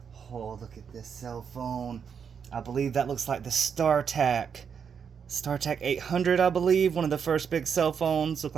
Oh, look at this cell phone. I believe that looks like the StarTAC 800, I believe. One of the first big cell phones. Looked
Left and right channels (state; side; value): quieter; left; 6.9 dB